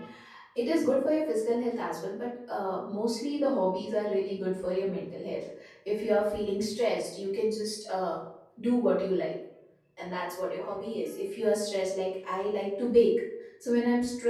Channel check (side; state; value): both; identical; correlation 1.00